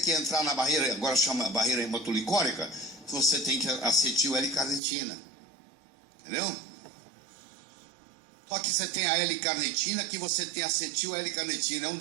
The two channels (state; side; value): drops out; left; at 4.8 s